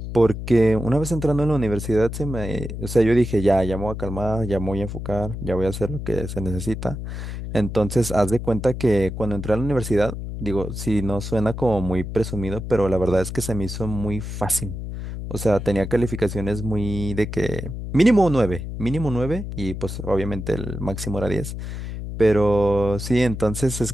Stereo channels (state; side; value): noise; left; hum, 7 dB below the sound